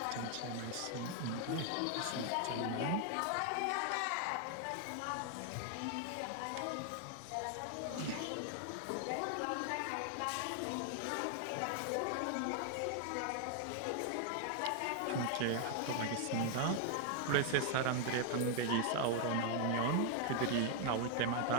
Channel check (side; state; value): both; different; correlation 0.00